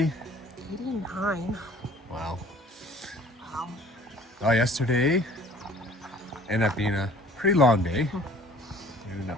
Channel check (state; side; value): normal; both; correlation 0.52